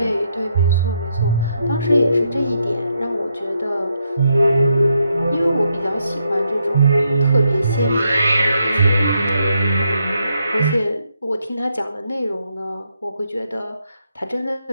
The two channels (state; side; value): inverted; both; correlation -0.78